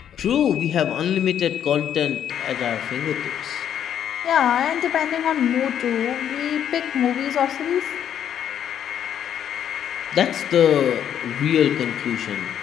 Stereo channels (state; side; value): quieter; right; 9.5 dB